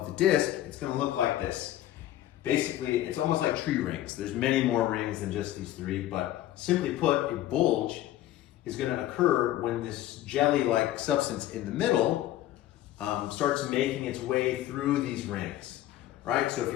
the disc, it's going to look like this. Basically, it's almost like tree rings. There's many more rings than just these three, but simply put, a bulge is going to occur when this jelly-like substance in the middle starts making its way through these rings, right? So if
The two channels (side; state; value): right; quieter; 13.7 dB